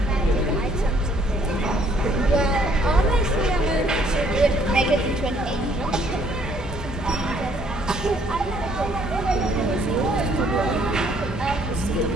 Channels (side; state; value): both; normal; correlation 0.64